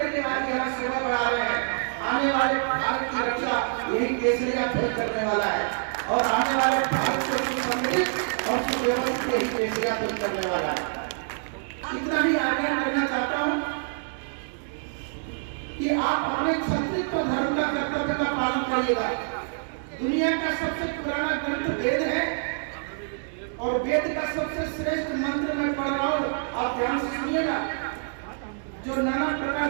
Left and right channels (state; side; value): silent; left; digital silence